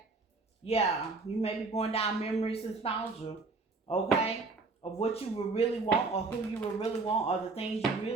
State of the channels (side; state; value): left; quieter; 3.9 dB